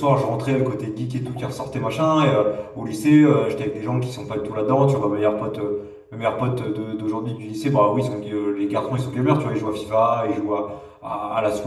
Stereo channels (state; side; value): identical; both; correlation 1.00